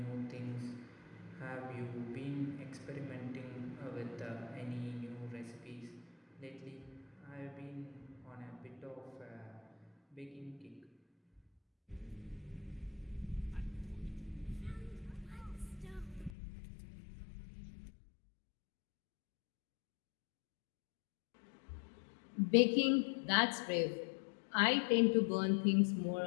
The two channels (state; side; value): drops out; right; at 16.3 s